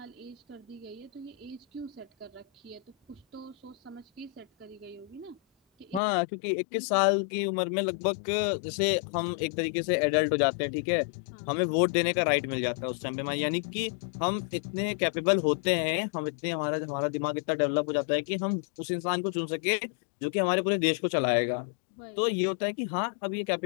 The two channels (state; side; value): drops out; right; at 6.0 s